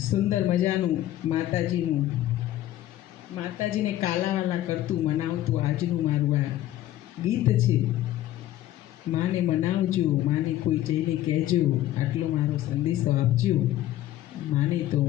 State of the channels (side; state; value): right; quieter; 13.8 dB